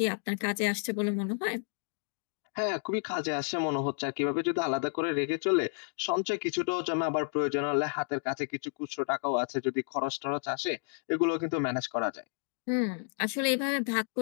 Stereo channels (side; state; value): right; silent; 57 dB below the other